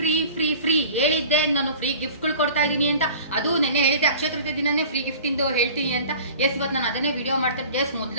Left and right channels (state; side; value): inverted; both; correlation -0.42